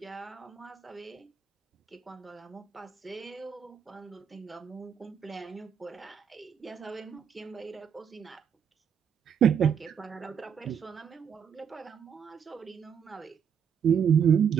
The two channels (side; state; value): left; quieter; 7.7 dB